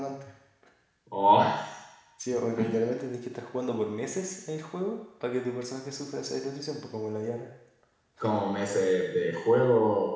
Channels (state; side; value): identical; both; correlation 1.00